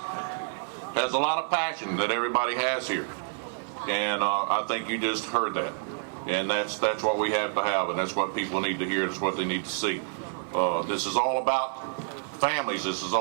has a lot of passion that everybody has here. And I think you just heard that. And that's what we have to have, and that's what people need to hear. That's what they need to see. This is all about families. This is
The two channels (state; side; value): silent; left; digital silence